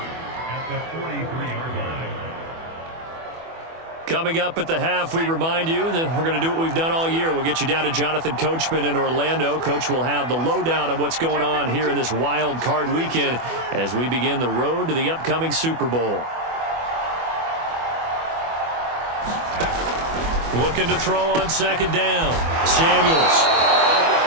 Coming up at the half, we remind you that we're going to do what we've done all year. We'll get you down to Jonathan Coachman in Orlando. Coach will have the lowdown on what's going on here in this wild card weekend as we begin the road to the upcoming Super Bowl. Looking to throw on second down. Samuels.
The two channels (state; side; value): late; left; 24 ms